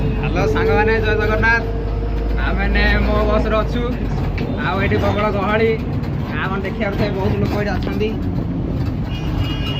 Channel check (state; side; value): identical; both; correlation 1.00